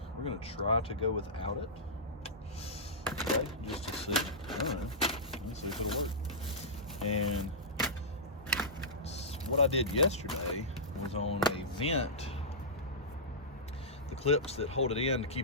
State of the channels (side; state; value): both; normal; correlation -0.15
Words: we're going to try to go without it. Okay, just to see. I don't know. Let's see if it'll work. And what I did yesterday was on a vent. The clips that hold it in to